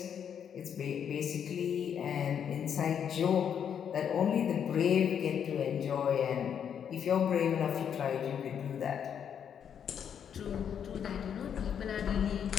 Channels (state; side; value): quieter; right; 8.2 dB